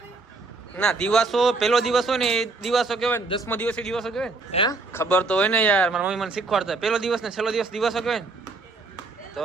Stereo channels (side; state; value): left; quieter; 3.7 dB